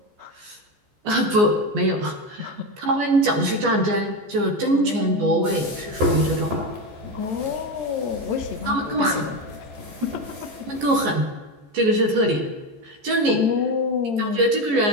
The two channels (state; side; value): late; left; 14 ms